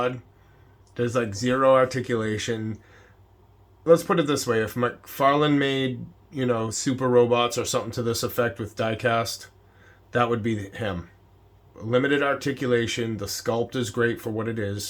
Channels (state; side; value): identical; both; correlation 1.00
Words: There's like zero articulation. Let's put it this way. If McFarlane made, super robots or something to this effect with diecast, that would be him. Limited articulation. The sculpt is great for what it